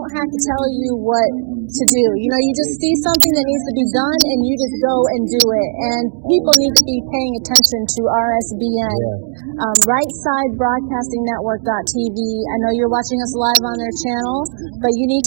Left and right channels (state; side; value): silent; left; digital silence